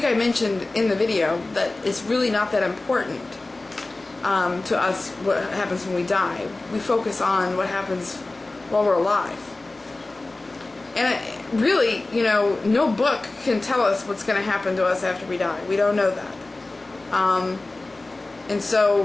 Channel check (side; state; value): right; quieter; 3.0 dB